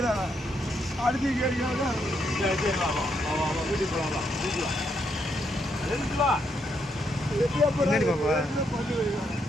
அடிச்சு கேட்கிறாங்க. வீட்டுக்கு போகலாம். பின்னாடி பாப்பா. பண்ணி வைக்கிறாங்க.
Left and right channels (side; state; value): both; normal; correlation 0.77